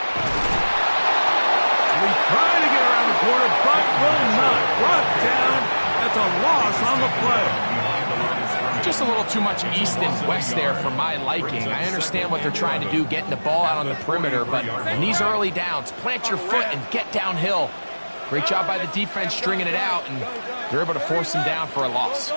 We try to get around the corner, but will not. Brought down. That's a loss on the play. Just a little too much east and west there for my liking. I understand what they're trying to do, getting the ball out on the perimeter, but in these early downs, plant your foot and get downhill. Great job by the defense stringing it out, and they're able to force him down for a loss.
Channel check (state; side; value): inverted; both; correlation -1.00